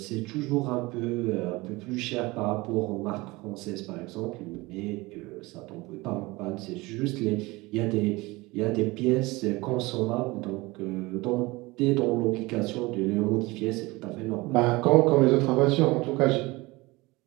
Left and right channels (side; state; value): left; quieter; 22.4 dB